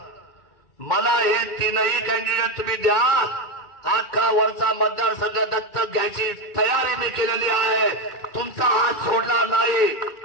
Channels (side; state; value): right; late; 2.1 ms